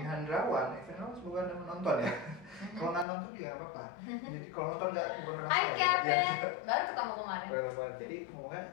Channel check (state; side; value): drops out; right; at 3.1 s